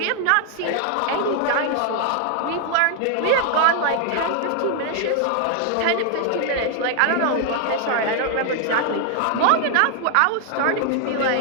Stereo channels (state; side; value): different; both; correlation 0.00